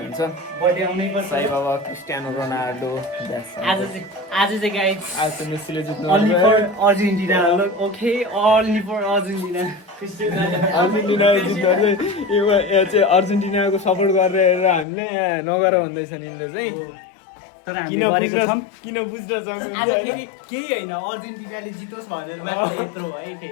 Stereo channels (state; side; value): drops out; right; at 14.9 s